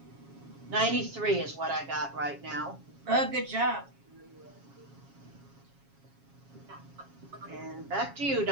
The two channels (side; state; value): left; late; 7.3 ms